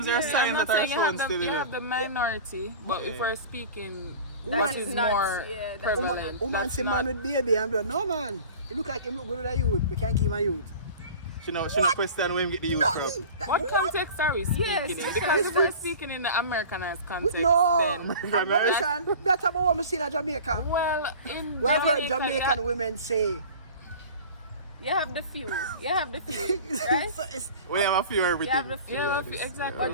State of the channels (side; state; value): both; inverted; correlation -0.38